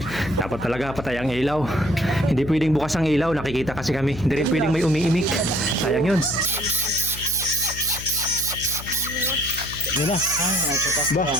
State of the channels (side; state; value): left; noise; hum, 12 dB below the sound